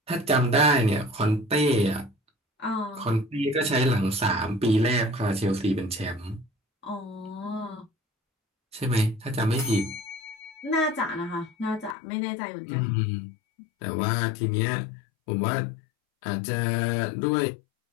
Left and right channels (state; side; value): drops out; right; at 12.0 s